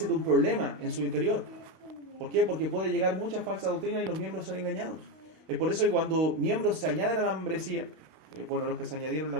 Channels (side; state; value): left; late; 32 ms